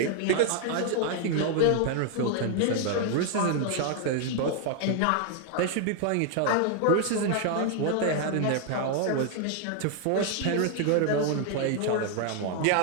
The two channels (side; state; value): both; different; correlation 0.00